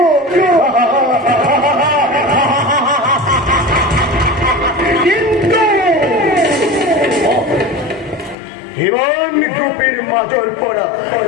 কিন্তু হিরণ গোপীর মাজর পড়া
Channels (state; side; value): drops out; right; at 8.3 s